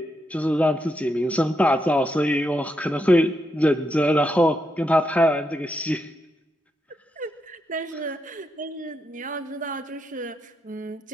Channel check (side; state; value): both; normal; correlation 0.82